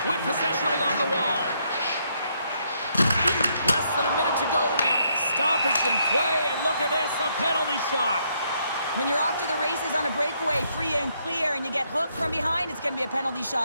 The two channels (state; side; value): inverted; both; correlation -0.73